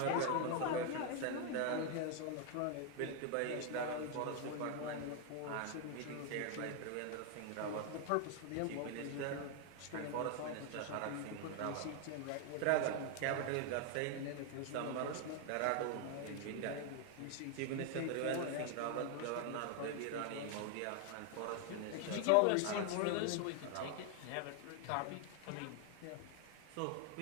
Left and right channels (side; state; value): both; different; correlation 0.00